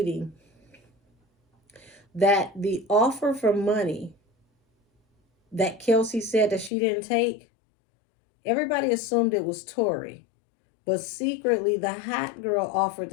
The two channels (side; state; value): right; drops out; at 6.7 s